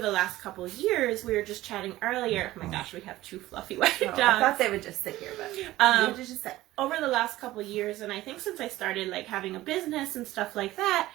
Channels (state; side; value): quieter; left; 16.4 dB